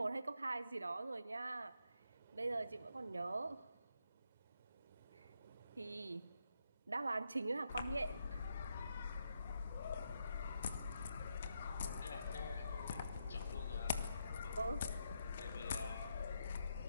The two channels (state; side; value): inverted; both; correlation -0.81